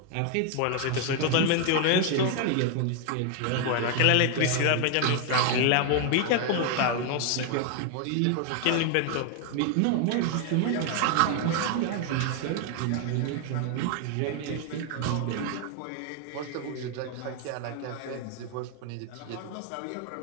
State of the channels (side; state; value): both; different; correlation 0.01